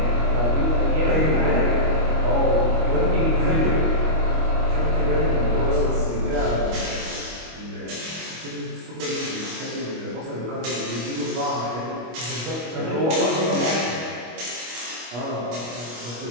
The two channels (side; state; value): left; late; 25 ms